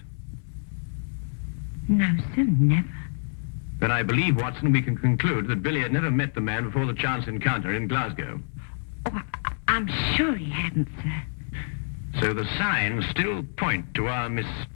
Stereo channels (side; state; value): right; silent; 58 dB below the other